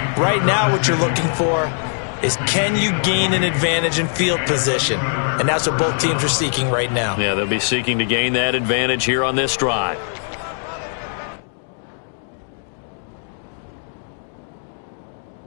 Right now what you're looking for is, can you gain an advantage in field position? And that's what both teams are seeking right now. Yeah, they'll be seeking to gain that advantage here on this drive.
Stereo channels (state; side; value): silent; right; 63 dB below the other